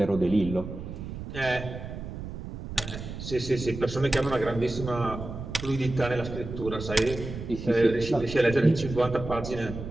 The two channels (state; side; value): noise; right; rumble, 9 dB below the sound